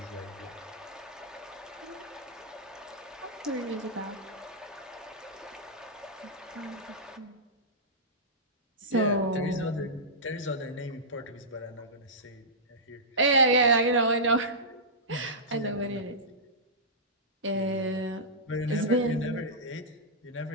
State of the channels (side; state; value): both; normal; correlation -0.14